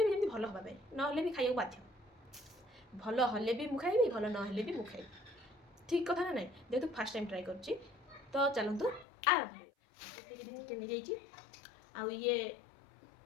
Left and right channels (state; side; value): drops out; right; at 9.1 s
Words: जमी भल हाँ ना भी खाइबा बाध्य भल हेल्ले भी मुझे खाइबी भल ना भी मुझे खाइबी ठीक कथा ना ना जेहेतु फास्ट टाइम ट्राए कर तो चलतु आरंभ चिकेन नहीं जाइए आउ ये